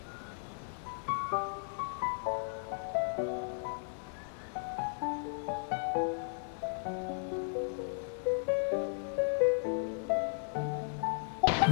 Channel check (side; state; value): right; silent; 54 dB below the other